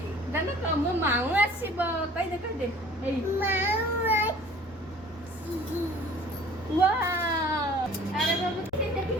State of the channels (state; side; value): noise; left; hum, 28 dB below the sound